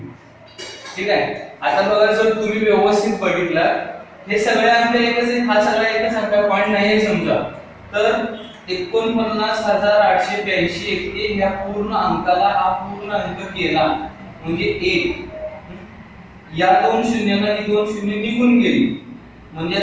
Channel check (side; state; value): both; identical; correlation 1.00